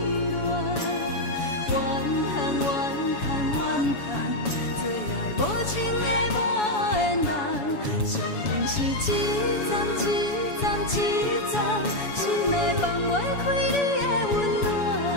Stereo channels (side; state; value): right; late; 7.1 ms